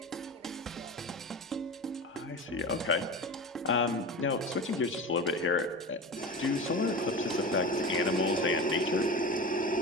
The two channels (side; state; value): both; normal; correlation 0.29